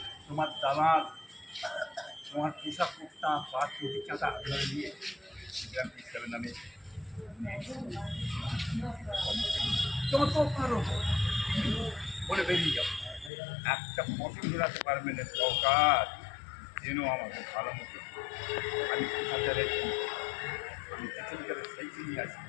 তোমার দালাল, তোমার পোশাক কুর্তা বা চটি চাঁদা ধরে নিয়ে সিস্টেমের নামে যত পারো বলে বেরিয়ে যাও। একটা পছন্দ রাখতে পারবে না সরকার, যেন আমাকে ভালো মতো আমি কোথাতে রেখি, আমি যেখানকার সেইখানেই আছি,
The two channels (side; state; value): right; drops out; at 13.3 s